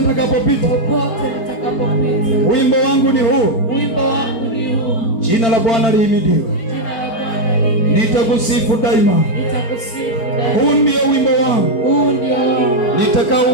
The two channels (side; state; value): right; late; 4.4 ms